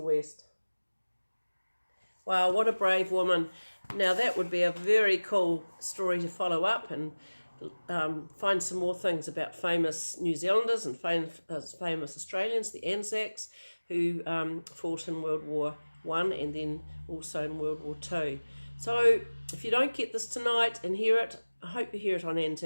Wow, what a brave woman. Now that would be a very cool story to follow up and find some more things about famous New Zealanders and famous Australians, the Anzacs, who fought in World War I and then also in World War II. So if you don't get this tonight and hear it, I hope you hear it on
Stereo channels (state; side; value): inverted; both; correlation -1.00